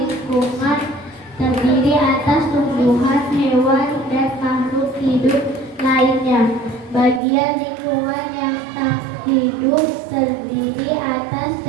terdiri atas tumbuhan, hewan, dan makhluk hidup lainnya. Bagian lingkungan yang tak hidup terdiri atas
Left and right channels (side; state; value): left; drops out; at 7.2 s